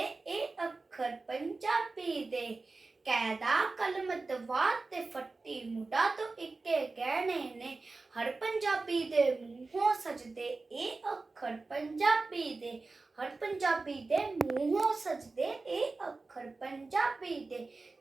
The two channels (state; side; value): quieter; left; 3.7 dB